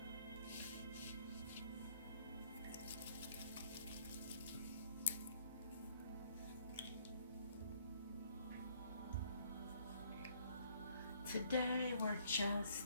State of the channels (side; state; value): both; inverted; correlation -0.63